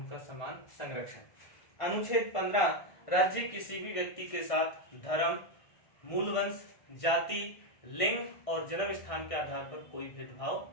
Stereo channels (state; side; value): late; right; 1.6 ms